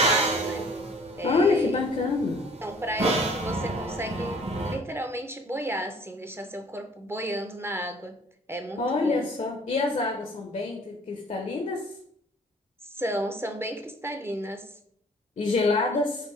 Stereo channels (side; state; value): both; normal; correlation 0.53